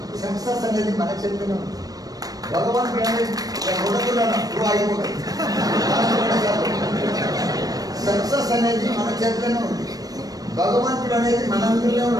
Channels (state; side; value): late; left; 0.18 ms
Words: సక్సెస్ అనేది మన చేతిలో ఉంది. భగవంతుడు అనేది అయిపోతుంది. సక్సెస్ అనేది మన చేతిలోనే ఉంది. భగవంతుడు అనేది మనందరిలో